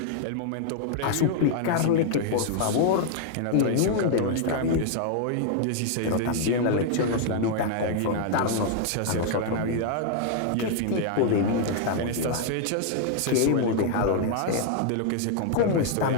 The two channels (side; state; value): both; different; correlation 0.00